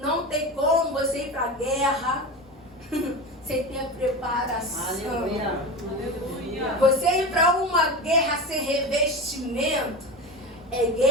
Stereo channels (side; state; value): both; normal; correlation 0.26